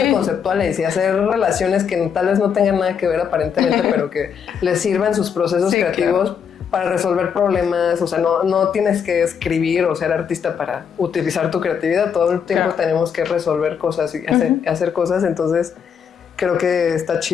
conceptuales y hacer relaciones que tal vez no tengan nada que ver aparentemente, pero que les sirvan sus procesos creativos para resolver problemas. O sea, no tienes que escribir o ser artista para utilizar tu creatividad. Todo el tiempo tenemos que resolver cosas y hacer cosas. Entonces, creo que está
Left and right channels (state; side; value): quieter; right; 7.2 dB